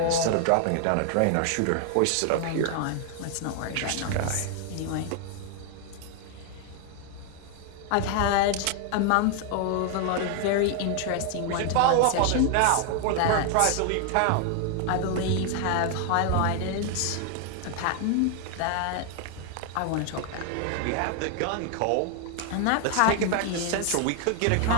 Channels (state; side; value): different; both; correlation 0.00